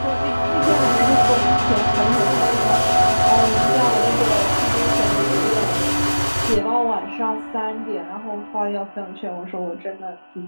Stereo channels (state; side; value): inverted; both; correlation -1.00